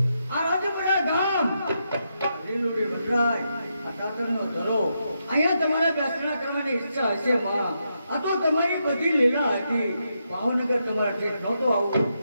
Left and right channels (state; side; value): inverted; both; correlation -0.83